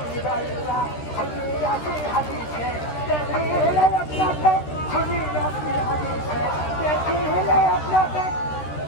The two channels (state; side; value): late; right; 13 ms